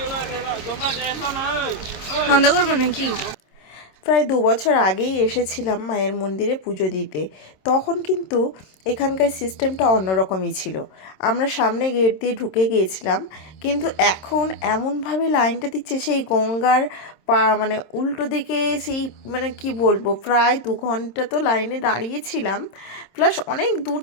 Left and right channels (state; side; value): late; right; 26 ms